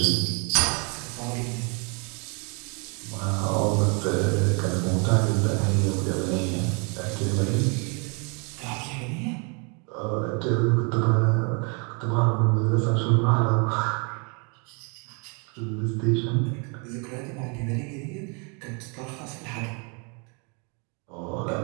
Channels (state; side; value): quieter; left; 34.8 dB